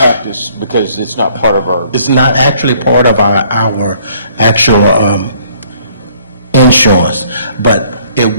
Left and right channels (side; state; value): both; inverted; correlation -0.61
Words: us because it's not part of our, It's not actually part of our actual insurance, but it